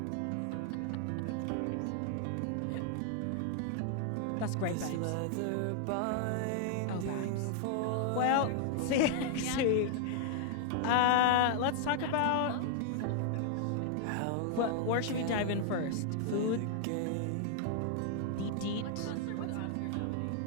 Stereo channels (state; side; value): different; both; correlation 0.00